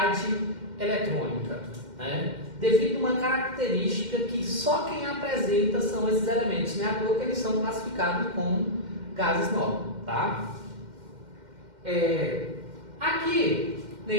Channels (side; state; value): left; late; 2.1 ms